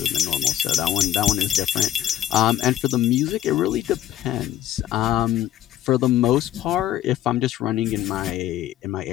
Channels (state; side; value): quieter; right; 11.8 dB